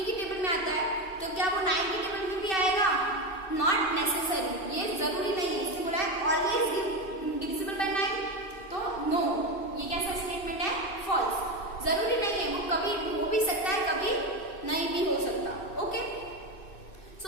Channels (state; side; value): late; right; 2.6 ms